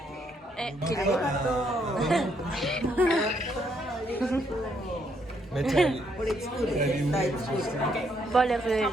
Mais t'as But it's good. It's good.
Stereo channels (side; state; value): both; normal; correlation 0.73